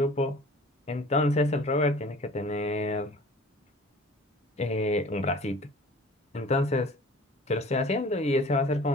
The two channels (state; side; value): normal; both; correlation 0.46